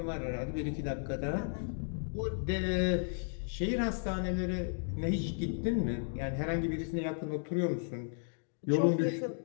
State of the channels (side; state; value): right; silent; digital silence